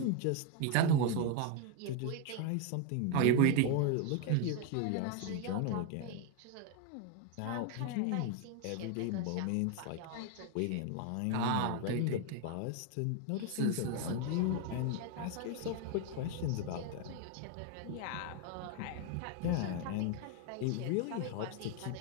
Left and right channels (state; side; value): different; both; correlation 0.01